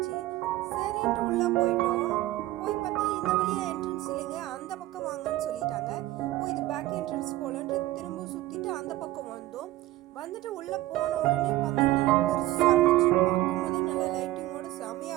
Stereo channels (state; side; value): quieter; left; 16.5 dB